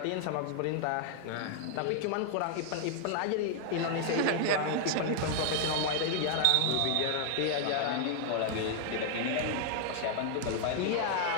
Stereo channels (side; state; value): both; different; correlation 0.00